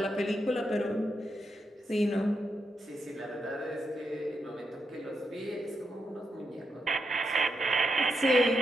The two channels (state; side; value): normal; both; correlation 0.83